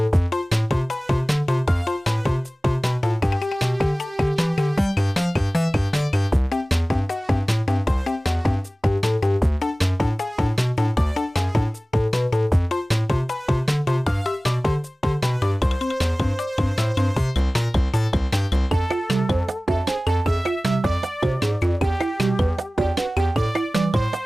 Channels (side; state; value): both; normal; correlation 0.98